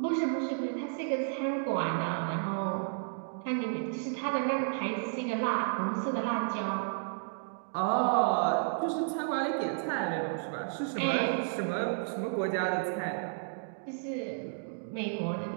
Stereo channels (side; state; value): left; silent; digital silence